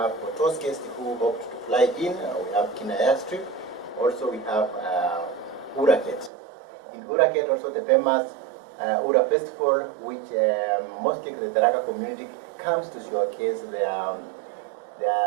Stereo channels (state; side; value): drops out; left; at 6.3 s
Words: for those guests who opt to fly in, we have Kina airstrip. Also we have Uraket. In Uraket also the famous Ura festival, which mostly the Tharaka community comes to showcase their